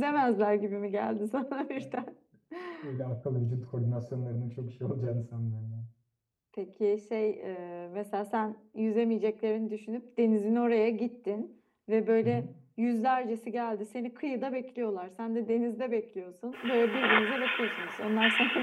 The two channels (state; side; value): identical; both; correlation 1.00